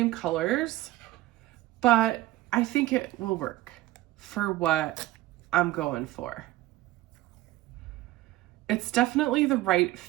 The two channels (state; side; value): quieter; left; 16.9 dB